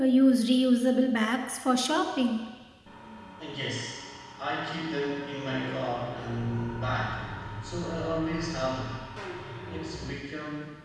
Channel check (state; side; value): identical; both; correlation 1.00